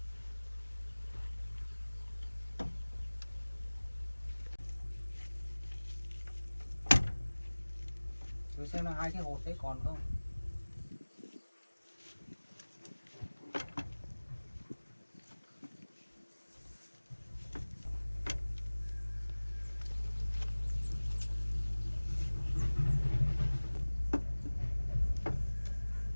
Rồi xem là hai cái hột đấy còn không.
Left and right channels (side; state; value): both; inverted; correlation -1.00